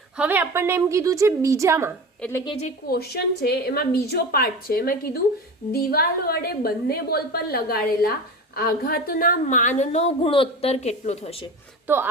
હવે આપણને એમ કીધું છે બીજામાં, એટલે કે જે ક્વેશ્ચન છે એમાં બીજો પાર્ટ છે, એમાં કીધું દિવાલ વડે બંને બોલ પર લગાડેલા આઘાતના માનનો ગુણોત્તર કેટલો થશે? તો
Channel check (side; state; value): both; normal; correlation 0.30